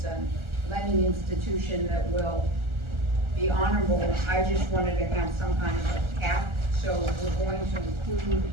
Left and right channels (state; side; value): late; left; 1.4 ms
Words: a lending institution that will be honorable, I just wanted to have some kind of a cap. So we're going to include